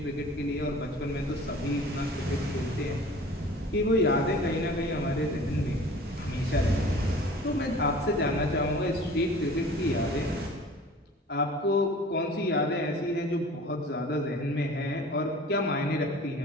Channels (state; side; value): normal; both; correlation 0.45